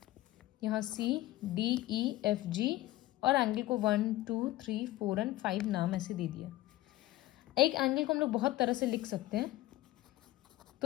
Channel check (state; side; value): quieter; right; 16.5 dB